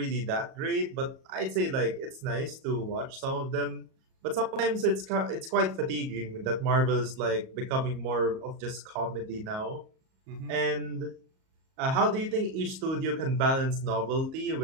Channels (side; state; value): left; late; 38 ms